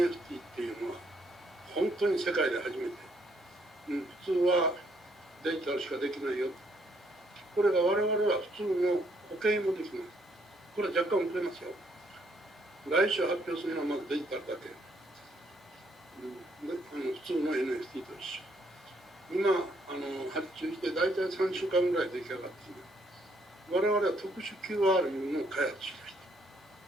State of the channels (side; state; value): both; normal; correlation 0.70